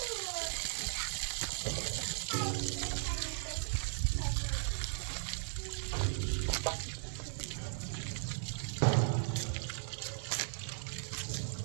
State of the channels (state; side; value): silent; left; digital silence